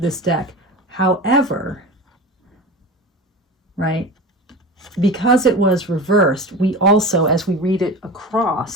deck. However, right, because it was reversed, we also, as we read it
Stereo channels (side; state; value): both; normal; correlation 0.31